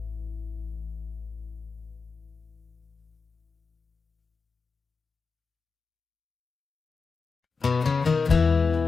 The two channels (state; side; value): quieter; right; 4.6 dB